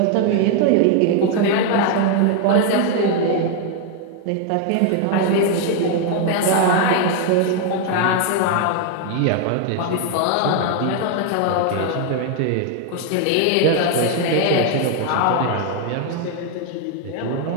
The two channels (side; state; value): both; different; correlation 0.00